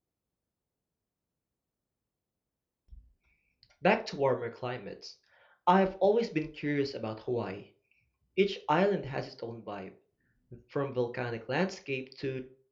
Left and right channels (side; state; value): both; identical; correlation 1.00